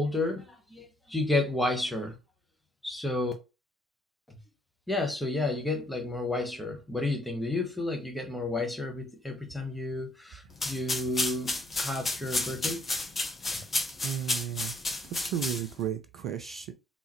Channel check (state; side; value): normal; both; correlation 0.68